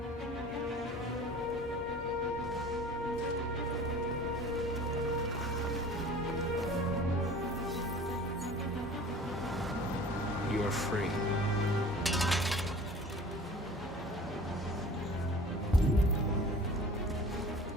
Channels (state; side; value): normal; both; correlation 0.44